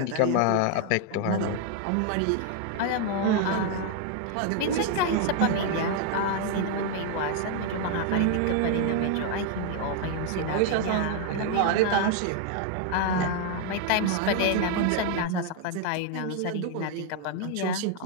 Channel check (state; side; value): different; both; correlation 0.00